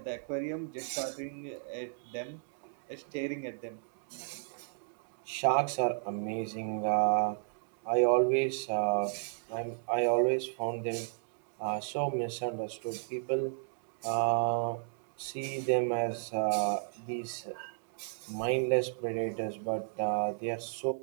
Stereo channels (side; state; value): left; silent; digital silence